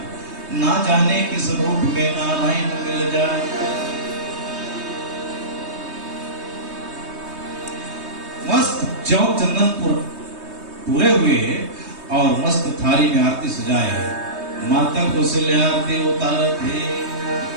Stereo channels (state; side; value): late; left; 3.2 ms